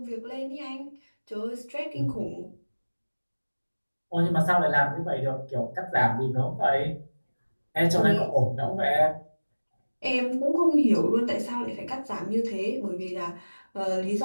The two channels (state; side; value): inverted; both; correlation -1.00